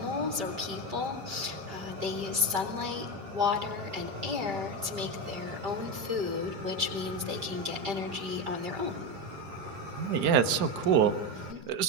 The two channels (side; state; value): left; late; 5.1 ms